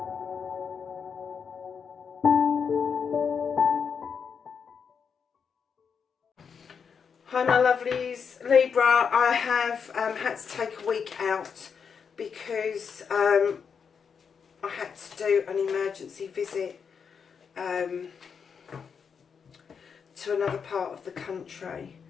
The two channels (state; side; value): quieter; right; 6.4 dB